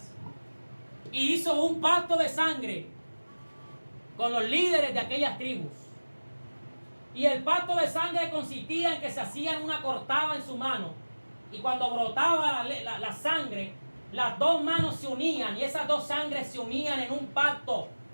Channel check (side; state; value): both; inverted; correlation -1.00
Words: y hizo un pacto de sangre con los líderes de aquellas tribus. Y el pacto de sangre consistía en que se hacían una cortada en su mano y cuando brotaba la sangre, las dos manos se unían y esas dos sangres se unían en un pacto.